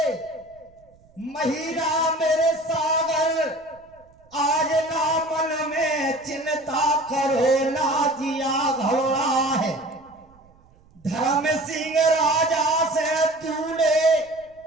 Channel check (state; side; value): noise; right; rumble, 30 dB below the sound